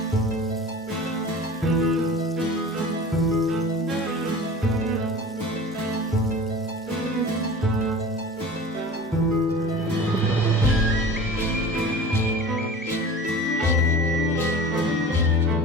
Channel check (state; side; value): normal; both; correlation 0.38